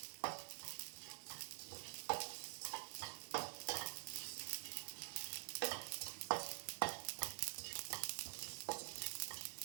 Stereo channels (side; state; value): left; silent; digital silence